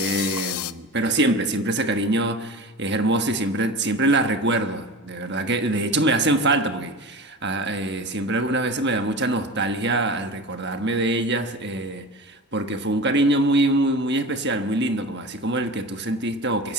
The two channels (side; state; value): both; normal; correlation 0.32